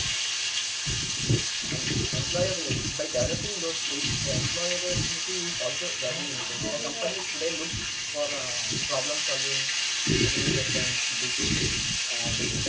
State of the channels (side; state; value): both; identical; correlation 1.00